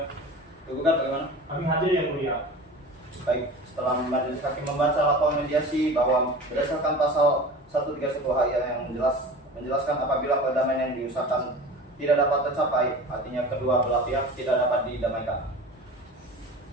Penggugat bagaimana? Kami hadir yang mulia. Baik, setelah majelis hakim membaca laporan mediasi bahwa berdasarkan pasal 131 HI yang menjelaskan apabila perdamaian yang diusahakan tidak dapat tercapai, artinya kedua belah pihak tidak dapat didamaikan,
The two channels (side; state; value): both; normal; correlation 0.36